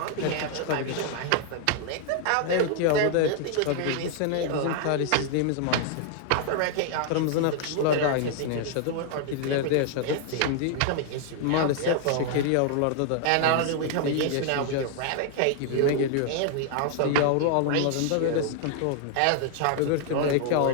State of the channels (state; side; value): different; both; correlation 0.00